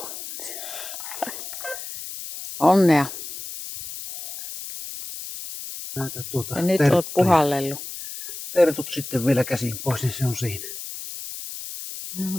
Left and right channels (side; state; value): left; noise; hiss, 10 dB below the sound